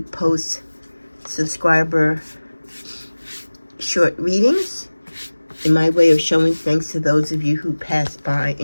post subscriber short readings in my way of showing thanks to those of you who pass by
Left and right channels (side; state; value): both; inverted; correlation -1.00